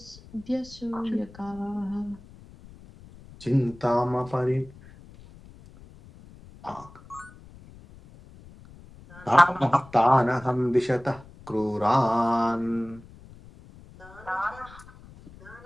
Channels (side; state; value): left; noise; rumble, 21 dB below the sound